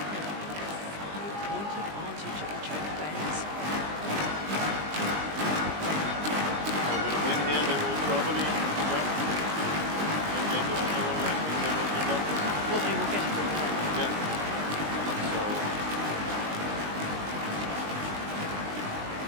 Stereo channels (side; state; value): left; late; 20 ms